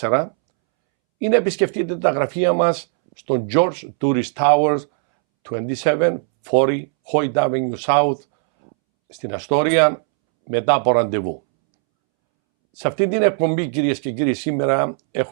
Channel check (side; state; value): left; silent; 67 dB below the other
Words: ή να επισκεφτείτε τα γραφεία μας στο George Tourist Towers 2740 Hoyt Avenue South στην Αστόρια μετά από ραντεβού. Σε αυτή την εκπομπή, κυρίες και κύριοι, σήμερα